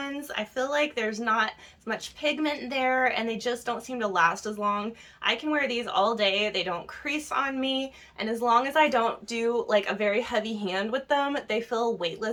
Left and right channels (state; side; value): identical; both; correlation 1.00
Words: I feel like there's not as much pigment there and they just don't seem to last as long. I can wear these all day, they don't crease on me, and as long as I don't do like a very heavy hand with them, they feel